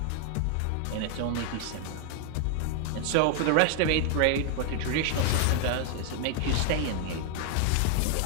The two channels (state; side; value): different; both; correlation 0.00